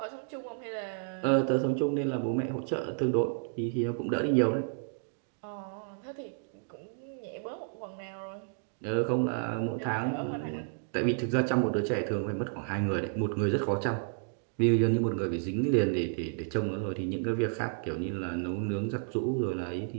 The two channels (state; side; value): silent; left; digital silence